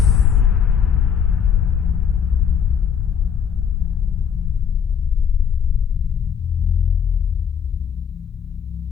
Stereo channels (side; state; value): right; quieter; 7.6 dB